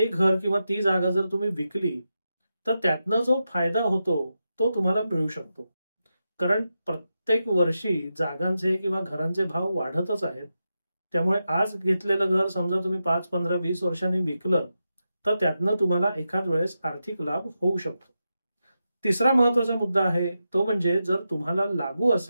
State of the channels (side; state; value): both; inverted; correlation -0.89